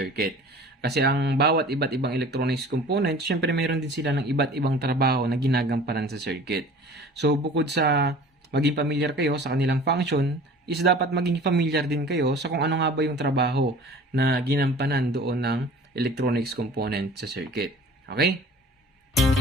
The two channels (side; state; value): both; normal; correlation 0.45